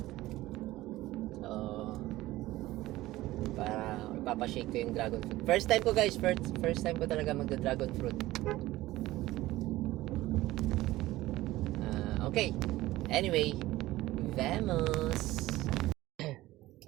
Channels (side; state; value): left; quieter; 17.1 dB